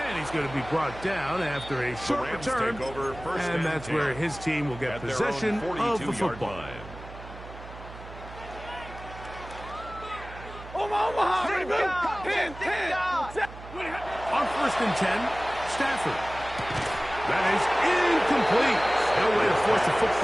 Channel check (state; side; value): noise; right; hum, 15 dB below the sound